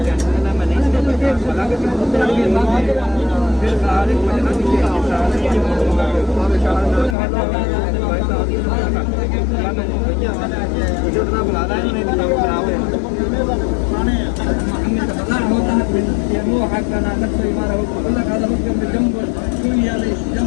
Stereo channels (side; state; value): right; drops out; at 7.2 s